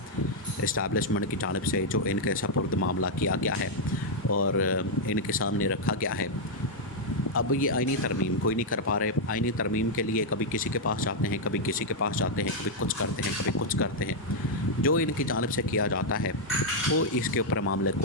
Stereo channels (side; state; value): both; normal; correlation -0.03